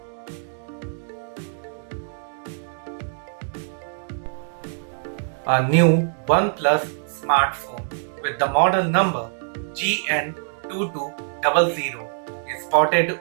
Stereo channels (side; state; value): left; silent; digital silence